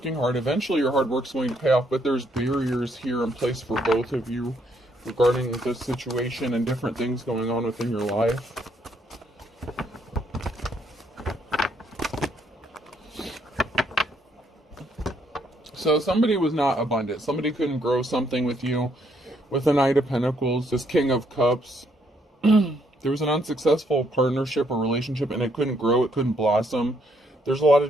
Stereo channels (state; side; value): normal; both; correlation 0.71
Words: hard. Eventually your hard work's going to pay off, but there's barriers here in place for both of you regarding this situation and different things going on within your life. So somebody was not abundant. Somebody couldn't grow something with you. With the Knight of Pentacles, this King of Cups, there was an unsuccessful partnership or relationship, and it couldn't grow, it couldn't blossom. There's a lot of